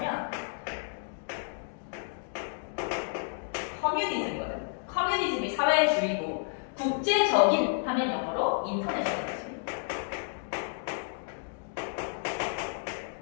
커뮤니즘이거든. 커뮤니즘이 사회주의고, 국제적인 하면 영어로 인터내셔널이지.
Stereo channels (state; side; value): silent; right; digital silence